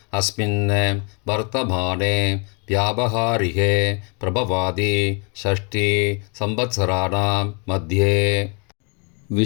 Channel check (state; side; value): quieter; right; 35.5 dB